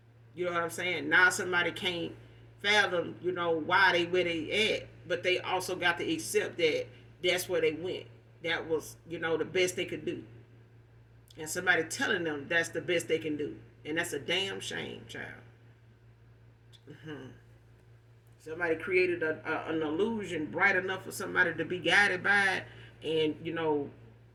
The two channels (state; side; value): identical; both; correlation 1.00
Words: You know what I'm saying? Now somebody can't fathom, why they where they at, but they also got to accept that that's where they went. That was, the best they could do. And somebody telling them that's the best they can do. And that's a damn shame, child. Somebody created an illusion bright enough for somebody to be guided by it and,